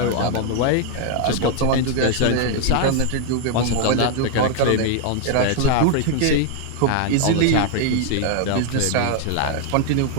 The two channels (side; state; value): both; different; correlation 0.00